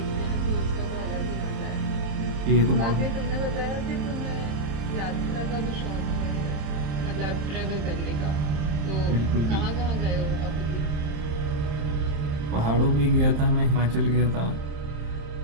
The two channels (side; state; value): left; late; 27 ms